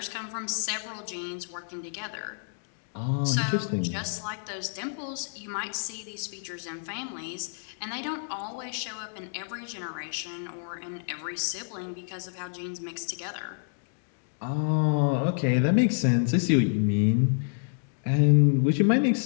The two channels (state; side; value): silent; right; digital silence